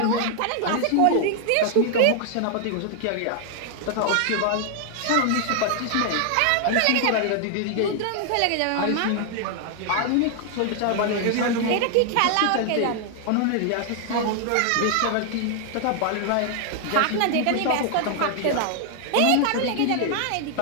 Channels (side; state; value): both; different; correlation 0.00